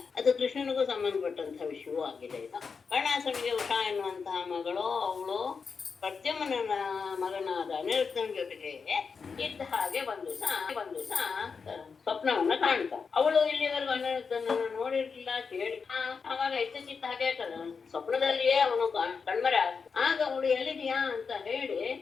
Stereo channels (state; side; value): quieter; right; 5.4 dB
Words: ಅದು ಕೃಷ್ಣನಿಗೂ ಸಂಬಂಧಪಟ್ಟಂತಹ ವಿಷಯವೂ ಆಗಿದೆ. ಇದು ಬಾಣಾಸುರನಿಗೆ ಉಷಾ ಎನ್ನುವಂತಹ ಮಗಳು, ಅವಳು ಪ್ರದ್ಯುಮ್ನ ಮಗನಾದ ಅನಿರುದ್ಧನ ಜೊತೆಗೆ ಇದ್ದ ಹಾಗೆ ಒಂದು ದಿವಸ ಸ್ವಪ್ನವನ್ನ ಕಾಣ್ತ. ಅವಳು ಇಲ್ಲಿವರೆಗೂ ಅನಿರುದ್ಧನನ್ನು ನೋಡಿರ್ಲಿಲ್ಲ, ಕೇಳಿ. ಆವಾಗ ಇದ್ದಕ್ಕಿದ್ದ ಹಾಗೆ ಸ್ವಪ್ನದಲ್ಲಿಯೇ ಅವನು ಕಣ್ಮರೆ ಆಗ. ಆಗ ಅವಳು ಎಲ್ಲಿದೆಯಾ ಅಂತ ಹೇಳಿ